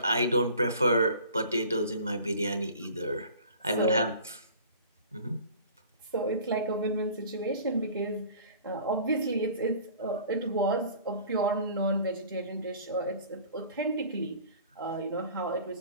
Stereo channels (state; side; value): inverted; both; correlation -0.46